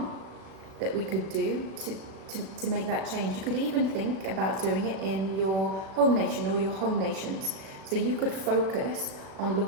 that we could do to make that change? You could even think about doing it in your home nation or your home nations. So you could focus on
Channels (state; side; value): late; left; 37 ms